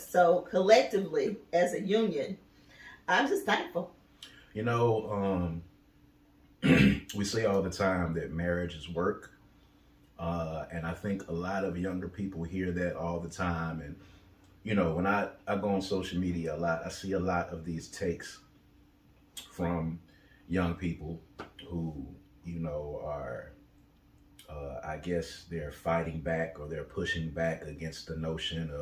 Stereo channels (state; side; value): identical; both; correlation 1.00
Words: So collectively, as a union, I'm just thankful. We say all the time that marriage is work. And I think a lot of younger people hear that all the time. And, when I go on social media a lot, I see a lot of these takes from young people who, are, I guess they're fighting back or they're pushing back against the notion